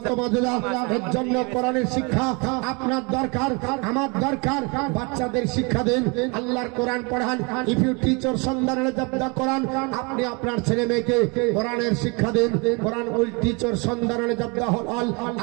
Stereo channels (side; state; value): left; quieter; 30.5 dB